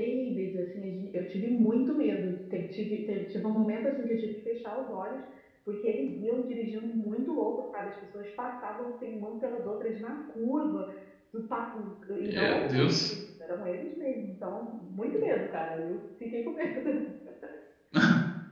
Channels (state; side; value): identical; both; correlation 1.00